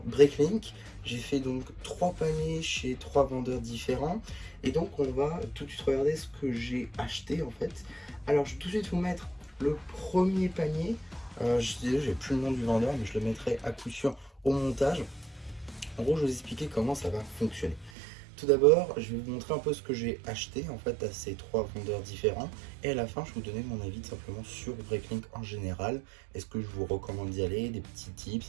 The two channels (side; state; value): left; drops out; at 17.9 s